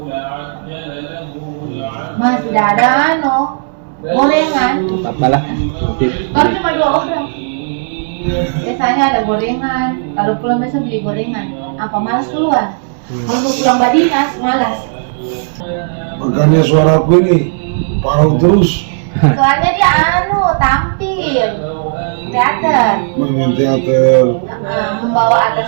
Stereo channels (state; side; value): silent; left; digital silence